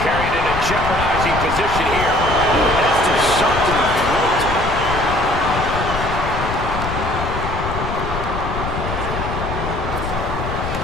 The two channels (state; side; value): noise; left; rumble, 5 dB below the sound